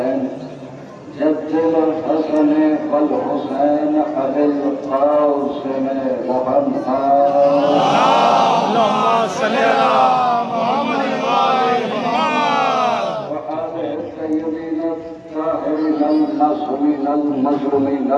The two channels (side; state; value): both; identical; correlation 1.00